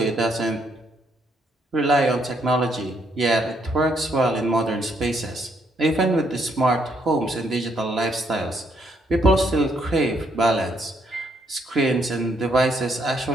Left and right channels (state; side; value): normal; both; correlation 0.72